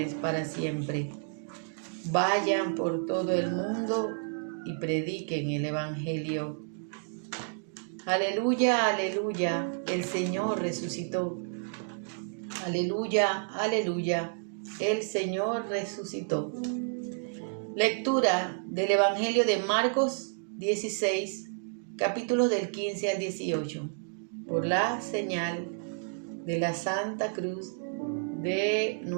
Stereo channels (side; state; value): left; silent; digital silence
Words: para siempre. Vayan por todo el mundo y prediquen el Evangelio. Aleluya, aleluya, el Señor resucitó. Aleluya, aleluya, el Señor resucitó. Lectura del Evangelio de Marcos 16, capítulos del 15 al 18. Por la señal de la Santa Cruz de